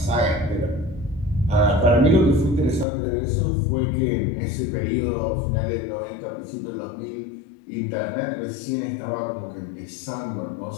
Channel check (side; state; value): right; drops out; at 2.9 s